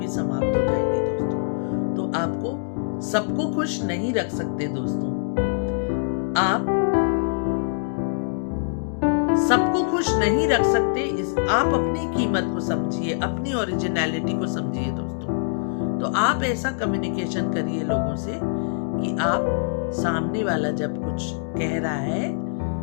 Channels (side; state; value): right; silent; digital silence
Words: समाप्त हो जाएगी दोस्तों। तो आपको सबको खुश नहीं रख सकते दोस्तों। आप सबको खुश नहीं रख सकते। आप अपनी कीमत को समझिए, अपनी ओरिजिनलिटी को समझिए दोस्तों। तो आप ऐसा कम्युनिकेशन करिए लोगों से कि आप सामने वाला जब कुछ कह रहा है